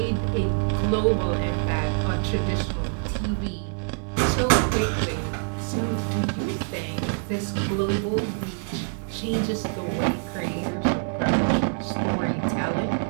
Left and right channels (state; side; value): silent; left; digital silence